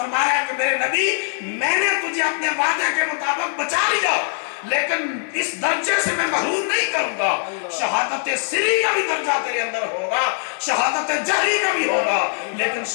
کہ میرے نبی میں نے تجھے اپنے وعدے کے مطابق بچا لیا لیکن اس درجے سے میں محروم نہیں کروں گا. شہادت سری کا بھی درجہ تیرے اندر ہوگا, شہادت جہری کا بھی ہوگا, لیکن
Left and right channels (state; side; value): silent; right; 60 dB below the other